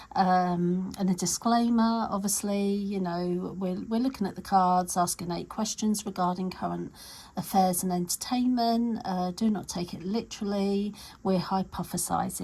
and a disclaimer. Obviously, you know, we're looking at the cards, asking 8 questions regarding current affairs and entertainment. Do not take it literally. We're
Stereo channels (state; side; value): identical; both; correlation 1.00